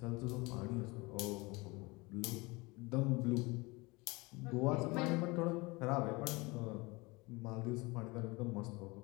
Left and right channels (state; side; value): quieter; right; 24.8 dB